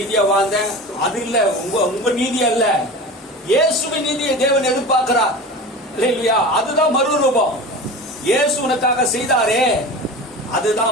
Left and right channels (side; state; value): both; normal; correlation 0.32